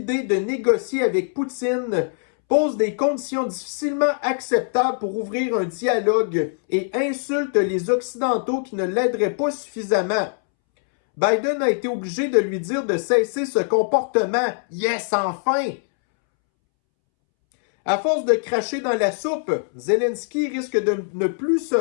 de négocier avec Poutine, pose des conditions difficilement acceptables pour ouvrir un dialogue et insulte les Occidentaux qui ne l'aideraient pas suffisamment. Biden a été obligé de lui dire de cesser ce comportement. Yes, enfin! À force de cracher dans la soupe, Zelensky risque de ne plus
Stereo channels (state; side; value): silent; right; 64 dB below the other